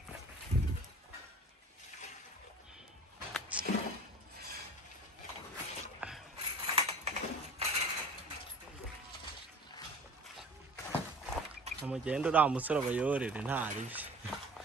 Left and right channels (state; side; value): normal; both; correlation 0.43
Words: Amugenda uriya musore abayorere ntaribi.